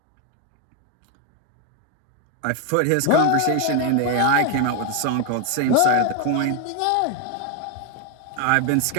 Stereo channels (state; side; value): different; both; correlation 0.01